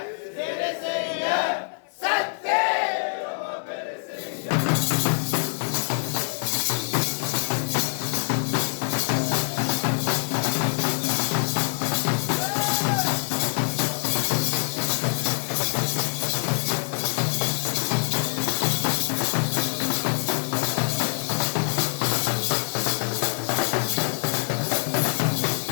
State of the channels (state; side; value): silent; right; 56 dB below the other